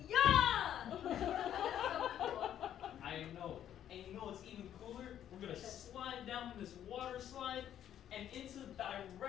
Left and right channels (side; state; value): right; quieter; 10.6 dB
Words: Yeah! That's so cool. I know. And what's even cooler? We're gonna slide down this water slide and into